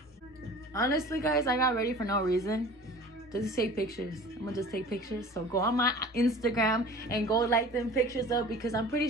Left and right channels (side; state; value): both; normal; correlation 0.42